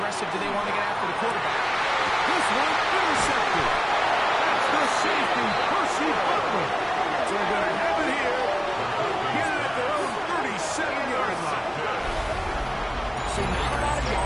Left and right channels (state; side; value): identical; both; correlation 1.00